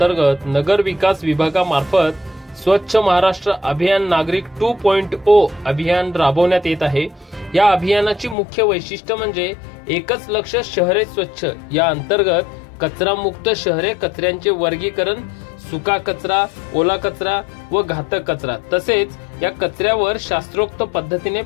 नगर विकास विभागामार्फत स्वच्छ महाराष्ट्र अभियान नागरिक 2.0 अभियान राबवण्यात येत आहे। या अभियानाची मुख्य वैशिष्ट्य म्हणजे एकच लक्ष शहरे स्वच्छ। या अंतर्गत कचरा मुक्त शहरे, कचऱ्यांचे वर्गीकरण, सुका कचरा, ओला कचरा व घातक कचरा, तसेच या कचऱ्यावर शास्त्रोक्त पद्धतीने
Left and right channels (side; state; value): right; drops out; at 8.3 s